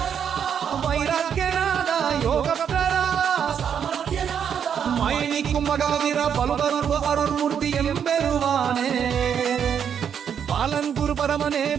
வைராக்கியநாதா யோகபக்தரா மயனிக்கும் மகாவீர பலுபருவ அருள்மூர்த்தி எம்பெருவானே பாலன் குரு பரமனே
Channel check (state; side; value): quieter; left; 8.0 dB